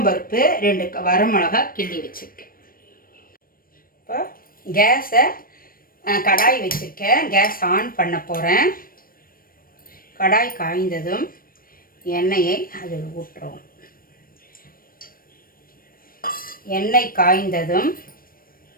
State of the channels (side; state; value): right; late; 0.41 ms